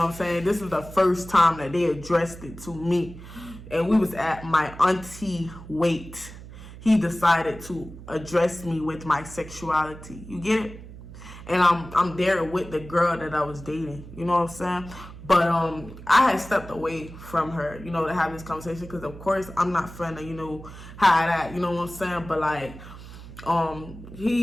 what I'm saying? This is the first time that they addressed it to me. And we was at my auntie Wait. He decided to address me with my sexuality. You get it? And I'm there with the girl that I was dating, you know what I'm saying? But I had stepped away from her, you know, to have this conversation, because of course I'm not finna, you know, hide that, you know what I'm saying? But like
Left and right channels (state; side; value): noise; right; hum, 15 dB below the sound